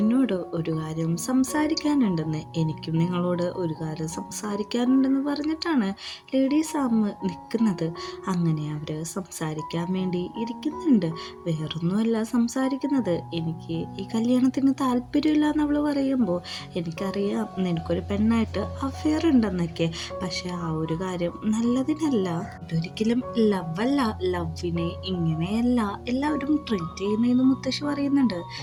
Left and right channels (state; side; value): identical; both; correlation 1.00